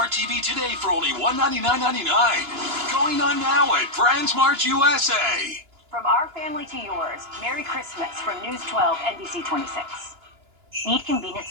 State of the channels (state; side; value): late; left; 2.9 ms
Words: TV today for only $199.99. Going on now at BrandsMart USA. From our family to yours, Merry Christmas from News 12 NBC 26. Need convenient